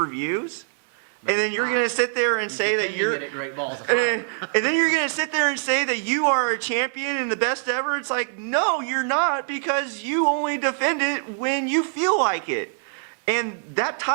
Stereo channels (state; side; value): silent; left; digital silence